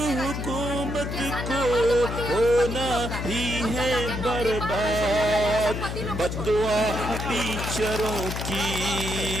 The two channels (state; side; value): noise; left; hum, 4 dB below the sound